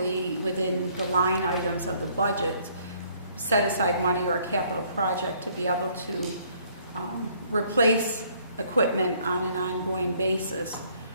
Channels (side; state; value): both; inverted; correlation -0.63